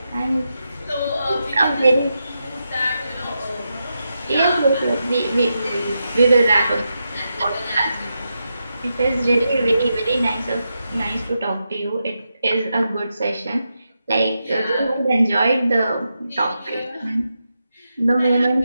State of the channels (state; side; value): inverted; both; correlation -0.87